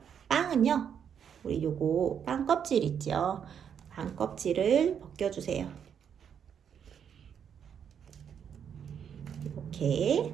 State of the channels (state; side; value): quieter; left; 8.0 dB